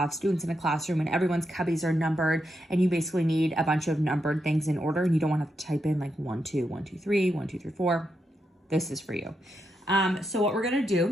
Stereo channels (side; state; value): both; normal; correlation 0.84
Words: students in a classroom and everyone's cubbies are numbered, and you basically need a bunch of numbered things in order, and you don't want to type in like 1 2 1 2 3 1 2 3 4. This is for you. So what we're going to